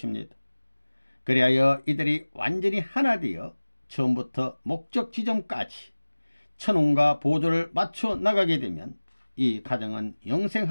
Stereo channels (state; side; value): inverted; both; correlation -1.00